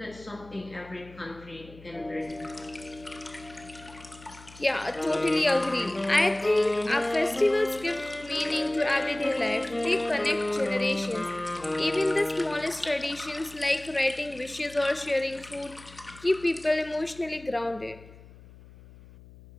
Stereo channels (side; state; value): left; noise; hum, 20 dB below the sound